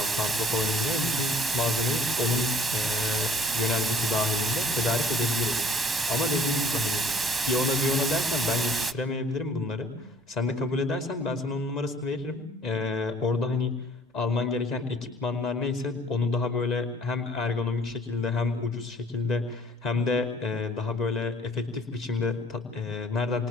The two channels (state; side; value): normal; both; correlation 0.56